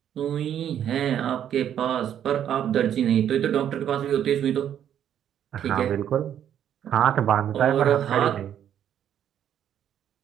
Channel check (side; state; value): left; quieter; 9.9 dB